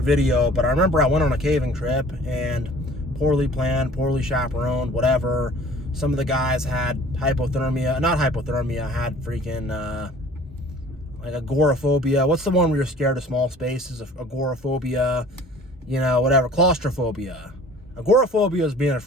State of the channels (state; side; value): normal; both; correlation 0.49